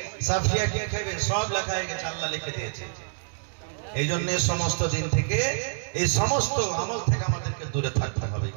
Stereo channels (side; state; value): left; silent; digital silence